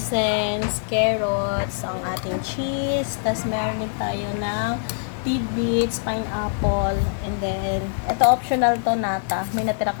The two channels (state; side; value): silent; right; 61 dB below the other